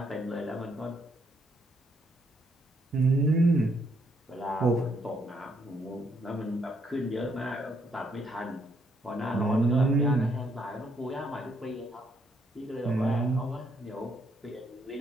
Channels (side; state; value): both; normal; correlation 0.73